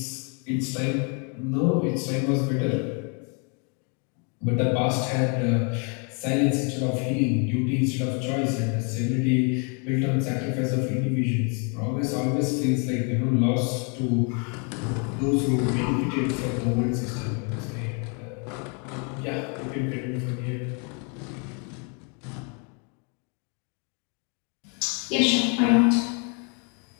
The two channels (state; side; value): quieter; right; 37.0 dB